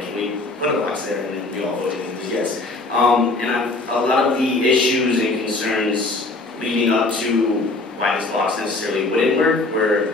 can we put a box there? And then we all voted and it was yes. And a lot of the issues and concerns leading up to why this box necessarily wouldn't work were,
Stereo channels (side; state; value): right; quieter; 3.2 dB